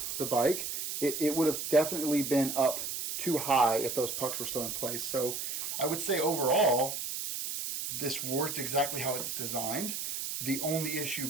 the bike, it would have definitely been up too high if those pucks were still in place. So I would say overall, this worked exactly how it's designed. The only issue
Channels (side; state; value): right; noise; hiss, 4 dB below the sound